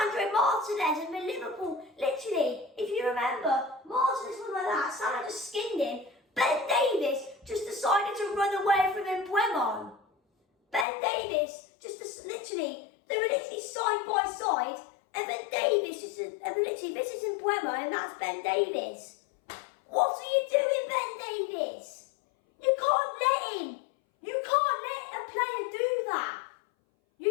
Martinez and the Liverpool. Literally, if you remember, Martinez was like that. Salah just skinned him. Ben Davies just decided to run away from Mbeumo. Ben Davies they were literally side by side, and then Davies this is Mbeumo, and that's Ben Davies. What are you doing, Ben Davies? You can't let a player do that. You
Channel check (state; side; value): drops out; right; at 10.9 s